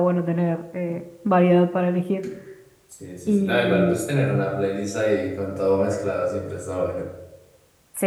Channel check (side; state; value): both; identical; correlation 1.00